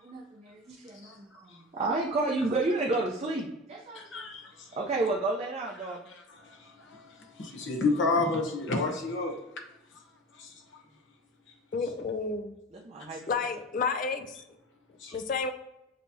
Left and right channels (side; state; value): both; normal; correlation 0.32